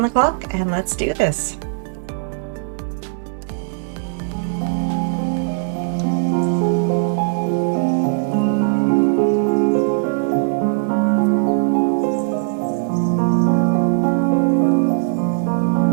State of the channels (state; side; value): silent; left; 66 dB below the other